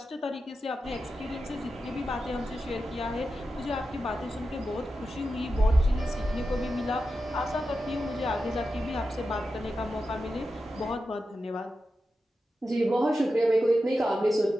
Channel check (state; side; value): normal; both; correlation 0.91